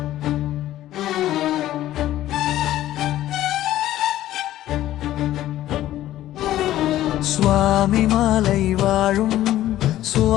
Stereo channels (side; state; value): right; quieter; 13.8 dB